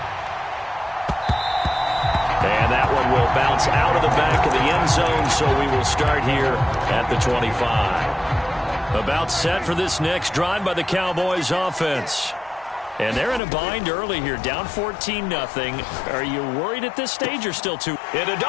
And that one will bounce out of the back of the end zone, so we will start here at the 25. About set for this next drive by the Cowboys offense. And they're in a bind early here, down 14-0. Are you worried at this stage or still too? Into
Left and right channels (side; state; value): right; drops out; at 13.4 s